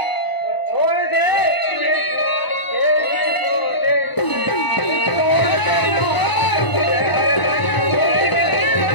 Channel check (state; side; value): late; right; 1.0 ms